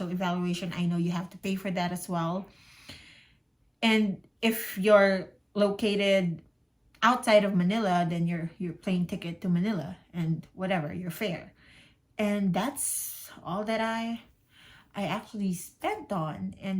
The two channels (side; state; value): both; identical; correlation 1.00